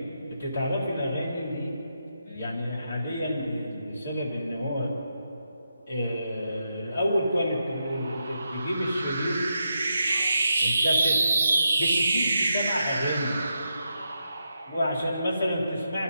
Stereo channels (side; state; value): both; inverted; correlation -0.84